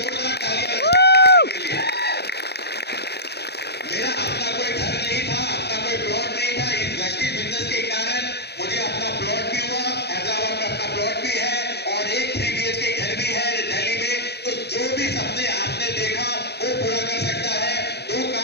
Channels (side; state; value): right; late; 0.48 ms